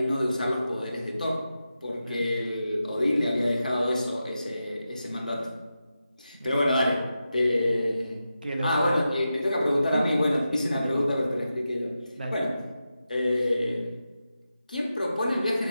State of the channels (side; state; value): both; inverted; correlation -0.90